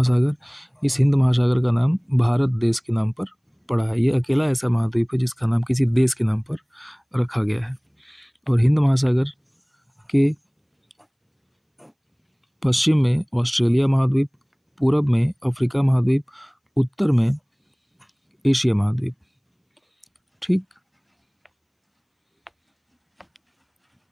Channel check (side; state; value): both; identical; correlation 1.00